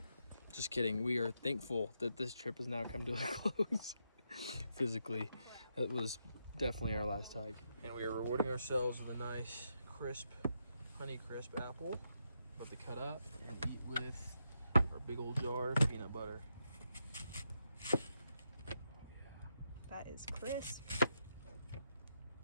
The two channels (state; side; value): inverted; both; correlation -0.82